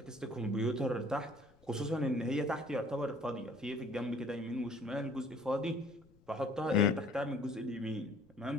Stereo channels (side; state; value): left; noise; rumble, 29 dB below the sound